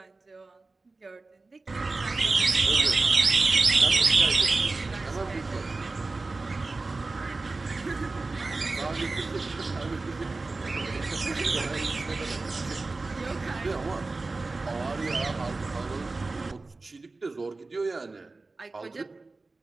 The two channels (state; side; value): quieter; left; 3.5 dB